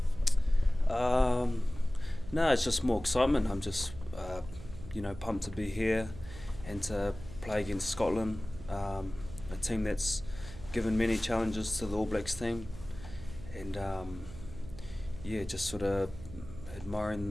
No, it's just more excitement. I'm just, pumped to be here and to play against Scotland, a team that's given many challenges to the All Blacks team, and just sort of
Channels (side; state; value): right; noise; hum, 15 dB below the sound